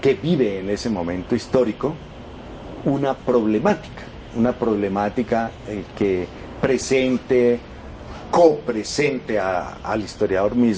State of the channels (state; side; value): identical; both; correlation 1.00